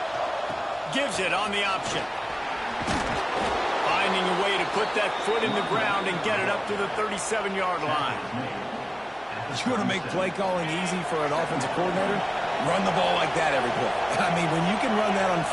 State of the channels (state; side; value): identical; both; correlation 1.00